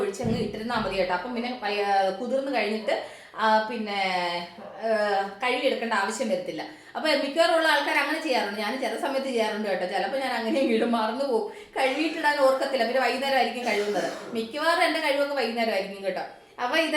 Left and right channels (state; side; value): identical; both; correlation 1.00